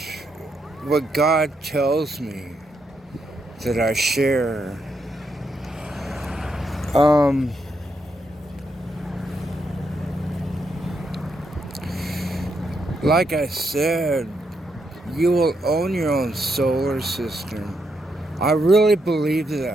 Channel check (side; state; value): both; normal; correlation 0.80